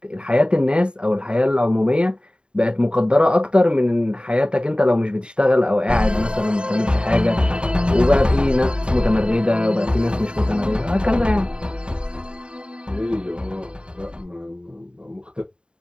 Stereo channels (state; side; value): late; left; 0.051 ms